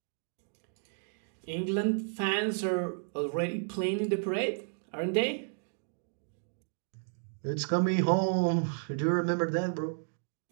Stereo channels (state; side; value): silent; left; digital silence